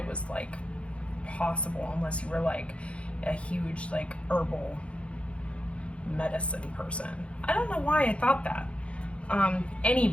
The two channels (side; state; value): right; late; 0.061 ms